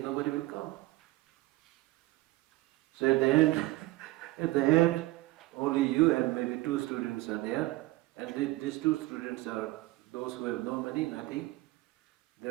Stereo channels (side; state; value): left; quieter; 19.2 dB